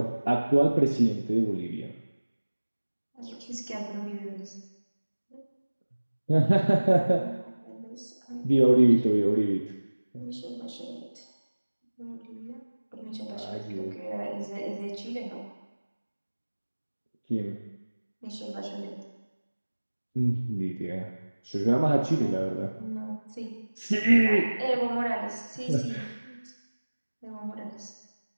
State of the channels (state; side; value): inverted; both; correlation -1.00